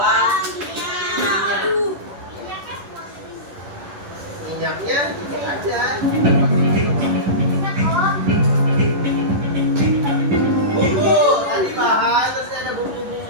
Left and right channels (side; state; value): left; late; 11 ms